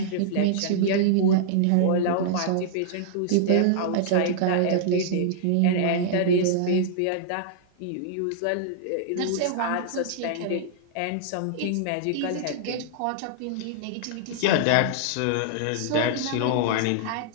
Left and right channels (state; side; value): different; both; correlation -0.01